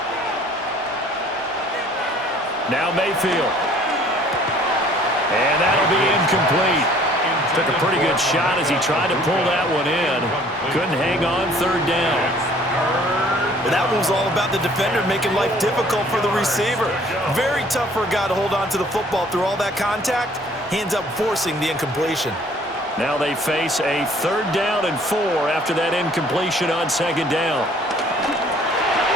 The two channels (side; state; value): both; normal; correlation 0.56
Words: Now Mayfield. And that'll be incomplete. Took a pretty good shot as he tried to pull that one in. Couldn't hang on. 3rd down. Well, that one was all about the defender making life difficult for the receiver. Very tough for a guy to hold on to the football through all that contact. He ends up forcing the incompletion. Now they face a 3rd down and 4 after that incompletion on 2nd down.